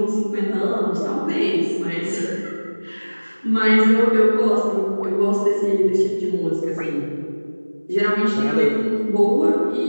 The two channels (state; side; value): inverted; both; correlation -1.00